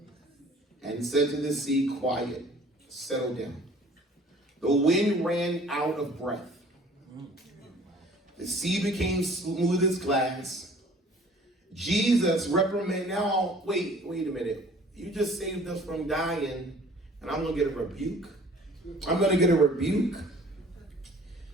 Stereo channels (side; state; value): both; normal; correlation 0.51